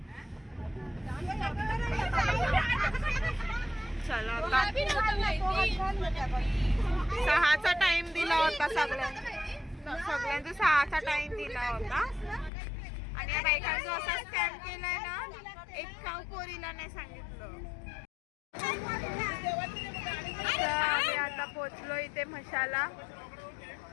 चला आता 6चा टाइम दिला होता सगळ्यांचा 6चा टाइम दिला होता आणि या बायकांचा असा स्कॅम केलाय ना, एक काव पोरीला नाही सांगितलं. तर आम्ही आता पोचलो इथे म्हशाला.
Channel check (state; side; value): drops out; right; at 12.5 s